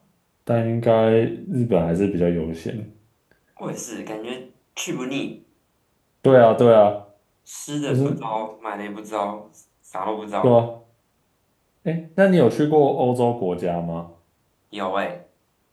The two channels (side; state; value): both; identical; correlation 1.00